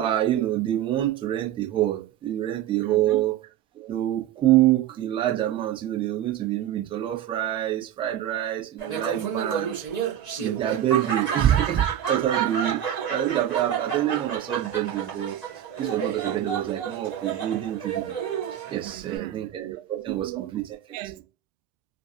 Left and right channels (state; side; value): quieter; left; 11.4 dB